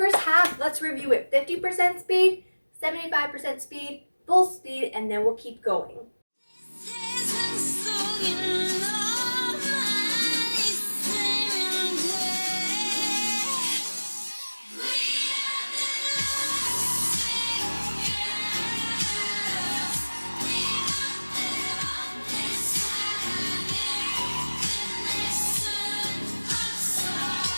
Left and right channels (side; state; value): both; inverted; correlation -1.00